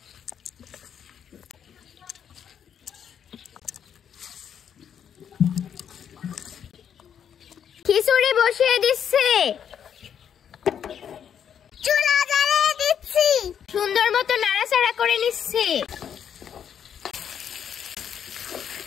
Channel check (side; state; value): right; quieter; 8.5 dB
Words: খিচুড়ি বসিয়ে দিচ্ছি, চুলা জ্বালিয়ে দিচ্ছি, সুন্দর মতো নাড়াচাড়া করে নিচ্ছি।